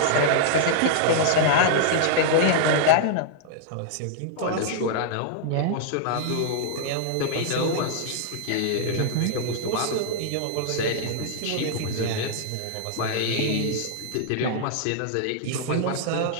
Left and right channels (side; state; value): both; different; correlation -0.01